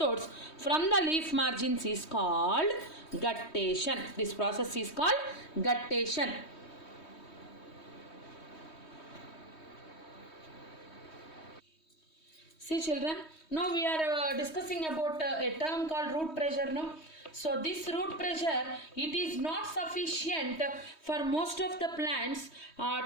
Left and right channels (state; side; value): late; right; 3.2 ms